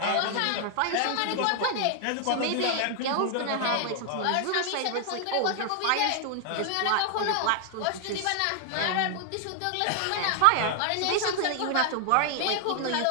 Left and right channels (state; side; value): different; both; correlation 0.00